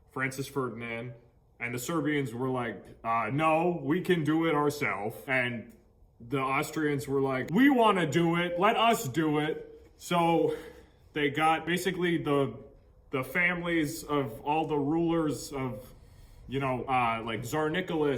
Francis Ferdinand. And the Serbians were like, no, we can do it ourselves. And the Austrians were like, we want to do it. Let us do it. So they got basically the families of all the rulers of, like Tsar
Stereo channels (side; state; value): both; identical; correlation 1.00